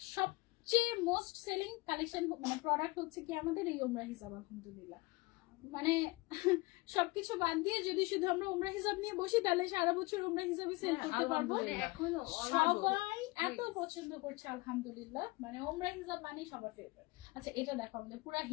সবচেয়ে মোস্ট সেলিং কালেকশন মানে প্রোডাক্ট হচ্ছে কি আমাদের এই ওমরা হিসাব। আলহামদুলিল্লাহ মানে সবকিছু বাদ দিয়ে যদি শুধু আমরা ওমরা হিসাব নিয়ে বসি তাহলে সারা বছর ওমরা হিসাবে সেল করতে পারবো। মানে এখনো সবাই এত পছন্দ করছে আলহামদুলিল্লাহ, মানে ওমরা হিসাব মানে সবার ফেভারিট। আচ্ছা এটা দেখো আমাদের পুরো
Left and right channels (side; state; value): right; quieter; 23.6 dB